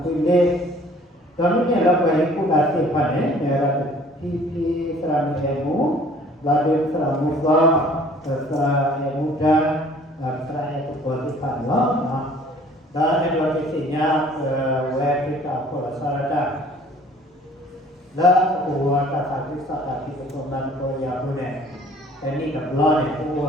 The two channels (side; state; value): both; normal; correlation 0.53